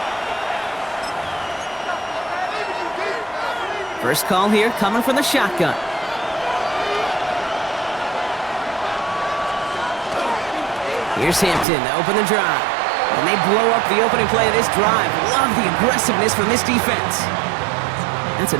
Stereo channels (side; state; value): left; drops out; at 11.7 s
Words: First call here coming from the shotgun. Here's Hampton to open the drive. And they blow up the opening play of this drive. Love the aggressiveness from this defense. That's a